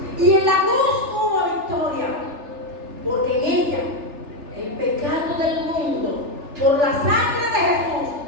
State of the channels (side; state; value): left; late; 3.3 ms